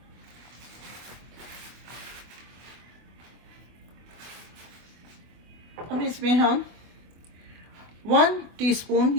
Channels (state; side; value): late; left; 24 ms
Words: अब इसमें हम 1 टीस्पून,